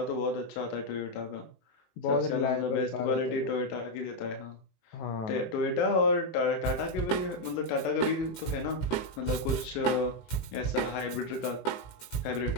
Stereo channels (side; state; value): right; late; 18 ms